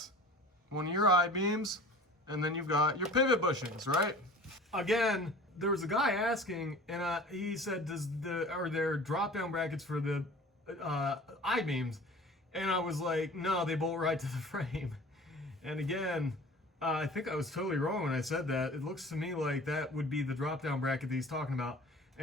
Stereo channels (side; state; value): both; normal; correlation 0.43